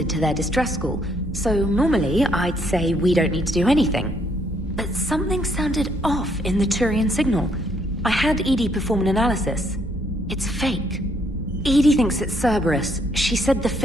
to their distress call, so normally I'd say we don't need to do anything. But something sounded off in the Turian signal. I had Edie perform an analysis. It's fake. Edie thinks it's Cerberus. She said the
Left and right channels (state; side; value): normal; both; correlation 0.70